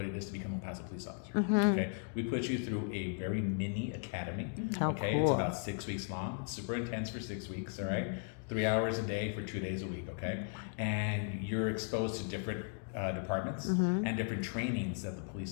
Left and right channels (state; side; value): silent; right; 53 dB below the other